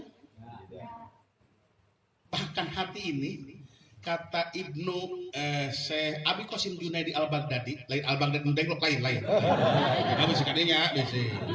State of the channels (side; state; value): both; identical; correlation 1.00